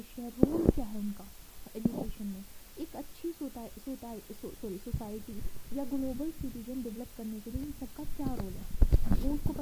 है, रोल क्या है उनका एजुकेशन में। एक अच्छी सोसाइटी या ग्लोबल सिटीजन डेवलप करने के लिए इन सबका क्या रोल है वो उसको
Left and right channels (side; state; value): both; identical; correlation 1.00